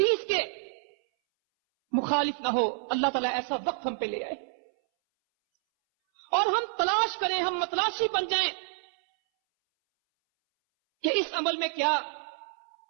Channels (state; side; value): silent; left; 59 dB below the other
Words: کے مخالف نہ ہو۔ اللہ تعالیٰ ایسا وقت ہم پہ لے آئے اور ہم تلاش کریں، ہم متلاشی بن جائیں کہ اس عمل میں کیا۔